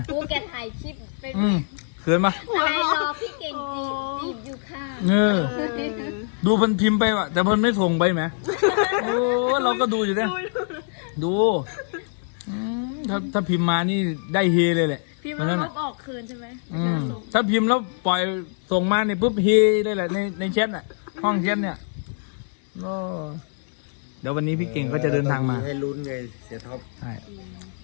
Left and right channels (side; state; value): right; silent; digital silence